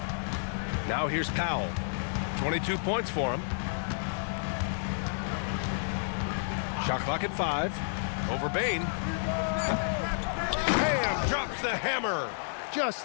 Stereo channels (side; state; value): right; silent; 57 dB below the other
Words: Now here's Powell. 22 points for him. Shot clock at 5. Over Bain. Bam! Drops the hammer.